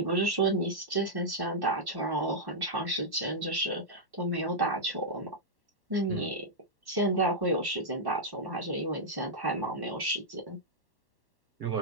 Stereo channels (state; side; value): late; left; 1.1 ms